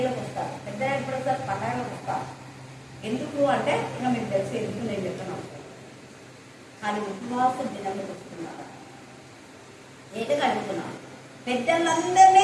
వస్తారు. పెద్దలు ఎప్పుడొస్తారు? పండగలకు వస్తారు. ఎందుకు అంటే ఇంకా మీకు తెలిసి ఎందుకు నేను చెప్తున్నాను. కానీ ఉపవాస దినానికి వస్తున్నారు. ఏటగా అడుగుతున్నాను, పెద్దలందరినీ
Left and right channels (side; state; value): both; identical; correlation 1.00